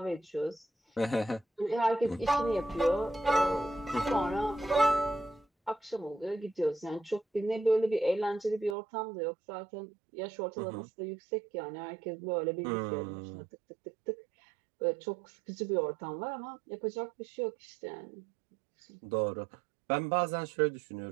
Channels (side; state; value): left; drops out; at 8.8 s